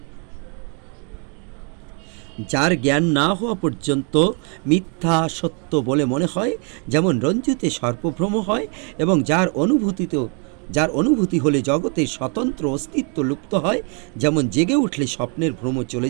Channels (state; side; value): quieter; left; 38.1 dB